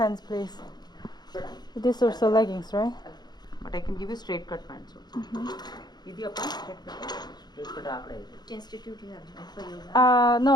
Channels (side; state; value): right; late; 0.20 ms